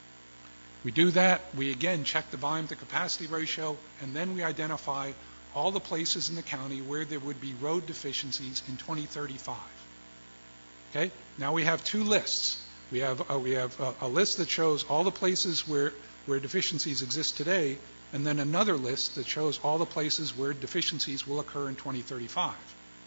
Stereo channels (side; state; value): both; inverted; correlation -1.00